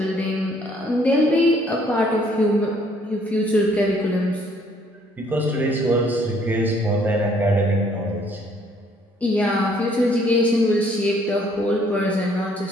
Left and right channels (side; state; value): both; normal; correlation 0.63